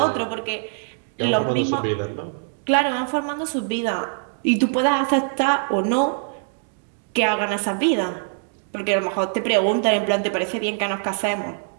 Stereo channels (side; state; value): left; silent; digital silence